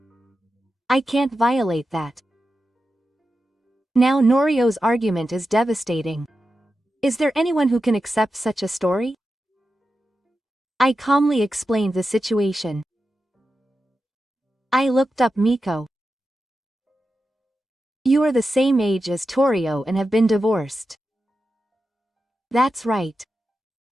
I can't violate that. Now Norio's argument is devastating. Is there anyone who can accept such a story? I calmly explained the situation. I looked up Miko. You are the same age as Torio and have been divorced. That's right.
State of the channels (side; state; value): both; normal; correlation 0.90